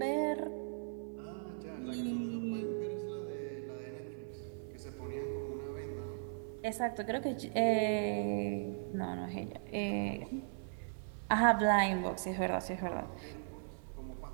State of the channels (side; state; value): left; silent; 52 dB below the other